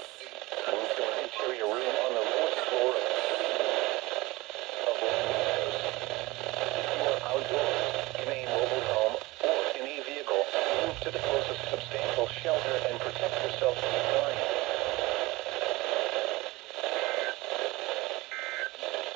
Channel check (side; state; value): left; quieter; 21.2 dB